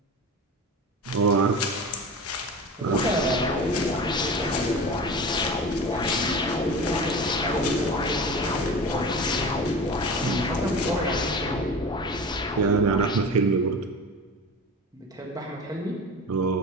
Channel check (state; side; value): normal; both; correlation 0.33